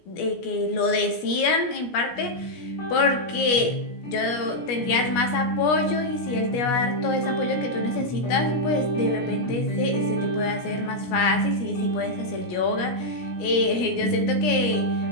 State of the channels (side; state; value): right; late; 17 ms